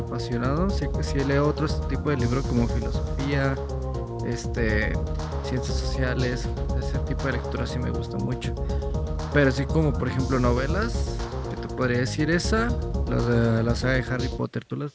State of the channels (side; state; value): both; identical; correlation 1.00